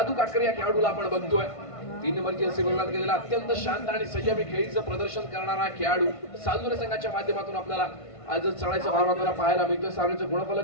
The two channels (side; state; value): right; late; 1.5 ms